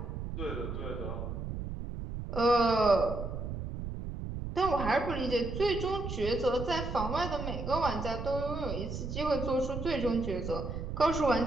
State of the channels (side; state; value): right; noise; rumble, 6 dB below the sound